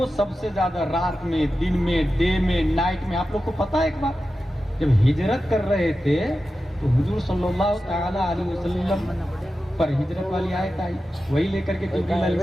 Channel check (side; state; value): both; normal; correlation 0.92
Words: سب سے زیادہ رات میں، دن میں، ڈے میں، نائٹ میں، آپ لوگ کو پتہ ہے ایک بات، جب ہجرت کر رہے تھے تو حضور صلی اللہ تعالی علیہ وسلم پر ہجرت والی آیت آئی، وہی لے کر کے جبریل علیہ